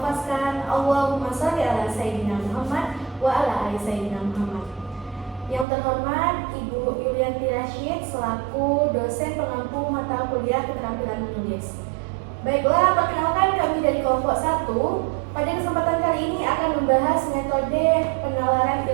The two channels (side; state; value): left; drops out; at 5.7 s